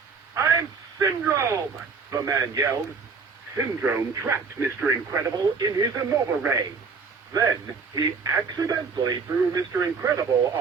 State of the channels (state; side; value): quieter; left; 5.0 dB